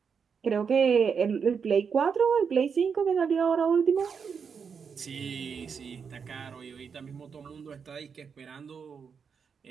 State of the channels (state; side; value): quieter; left; 6.3 dB